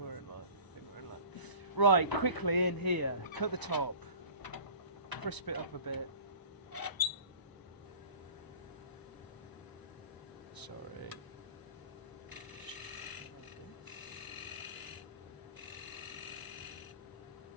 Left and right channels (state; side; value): late; right; 1.0 ms